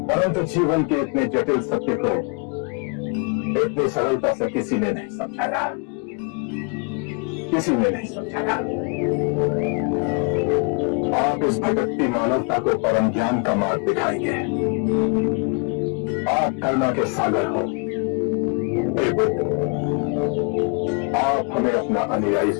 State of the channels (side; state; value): right; quieter; 34.5 dB